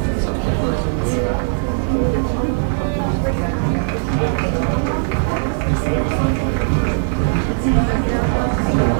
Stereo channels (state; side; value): silent; left; 67 dB below the other